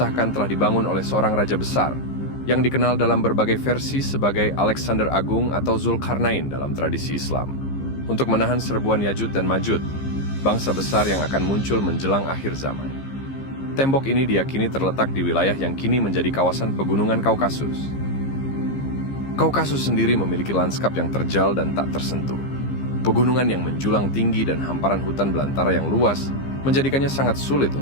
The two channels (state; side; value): late; right; 15 ms